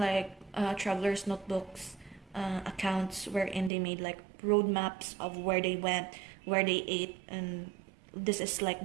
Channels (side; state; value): left; drops out; at 3.7 s